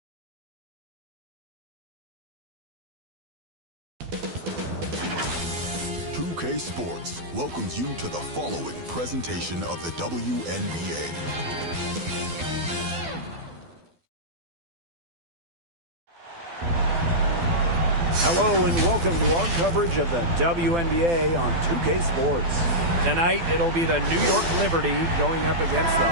Sports welcomes you to the following presentation of the WNBA. Hello and welcome to our coverage of the WNBA on 2K Sports. Tonight, it'll be the New York Liberty going up against the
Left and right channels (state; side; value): late; left; 12 ms